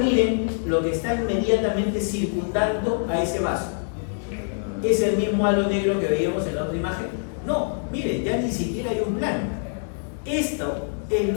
lo que está inmediatamente circundando a ese vaso. ¿Es el mismo halo negro que veíamos en la otra imagen? No, miren, ya ni siquiera hay un plano. Esto es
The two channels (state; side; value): silent; right; 62 dB below the other